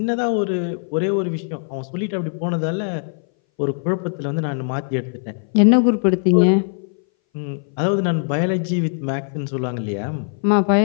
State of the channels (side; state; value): right; silent; 61 dB below the other